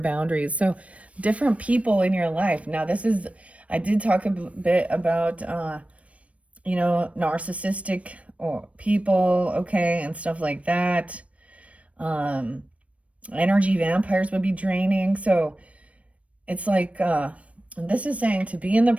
So different people in your life. Now this is, I did talk a bit about, narcissistic or people, okay, and stuff like that. Energy vampires would be draining. So it's like, this is saying to be in the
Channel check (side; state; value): left; late; 0.064 ms